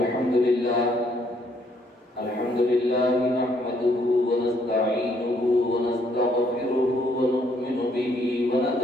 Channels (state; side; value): normal; both; correlation 0.68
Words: لله نحمده ونستعينه ونستغفره ونؤمن به